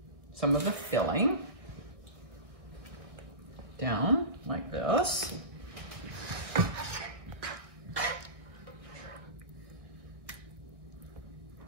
some of the filling down like this.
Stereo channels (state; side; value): late; left; 1.4 ms